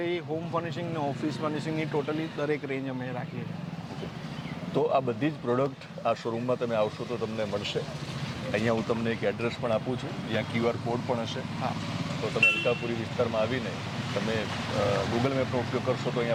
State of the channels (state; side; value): identical; both; correlation 1.00